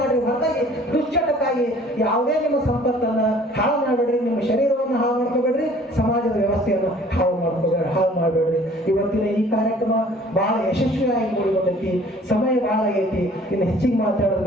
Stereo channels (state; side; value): normal; both; correlation 0.53